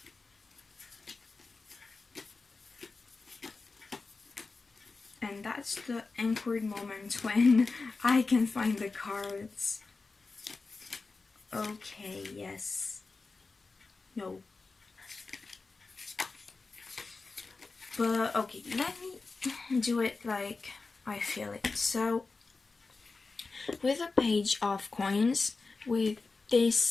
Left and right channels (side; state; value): right; quieter; 4.0 dB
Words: And that's the awkward moment when I can find the cards. Okay, yes. No. But okay, let me do it like I feel it. So, with a Page of Coins, with this